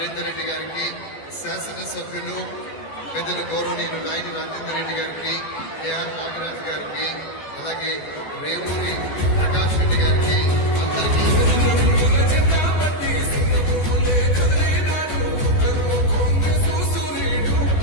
రెడ్డి గారికి, శాసనసభ్యులు పెద్దలు గౌరవనీయులు నాయని రాజేందర్ రెడ్డి గారికి, ఏఆర్ నాగరాజ్ గారికి, అలాగే రేవూరి ప్రకాష్ రెడ్డి గారికి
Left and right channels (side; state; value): right; late; 12 ms